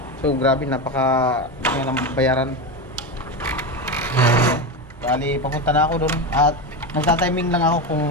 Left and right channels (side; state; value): both; normal; correlation 0.17